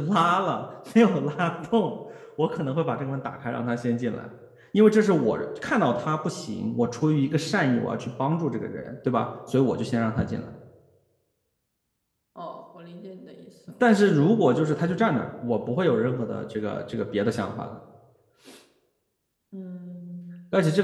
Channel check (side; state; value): both; identical; correlation 1.00